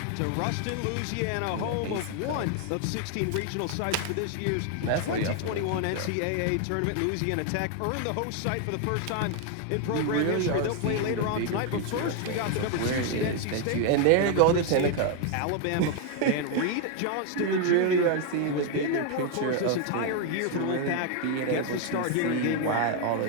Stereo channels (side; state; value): both; different; correlation 0.01